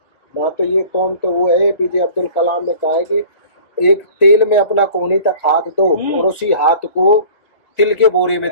ना, तो ये कौन तो वो है APJ अब्दुल कलाम ने कहा है कि एक तेल में अपना कोहनी तक हाथ दो और उसी हाथ को तिल के बोरे में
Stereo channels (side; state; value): right; late; 1.9 ms